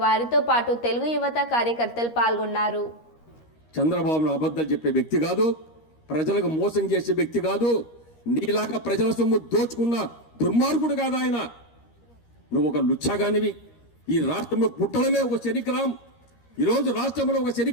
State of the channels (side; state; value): right; late; 13 ms